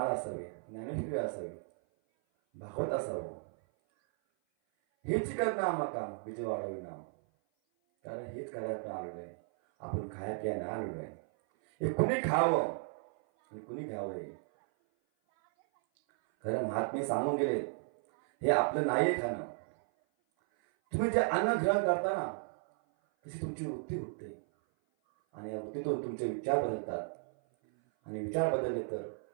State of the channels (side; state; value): left; silent; 55 dB below the other